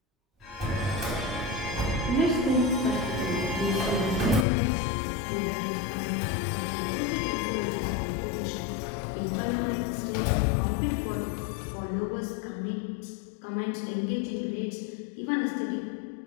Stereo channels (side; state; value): right; drops out; at 4.5 s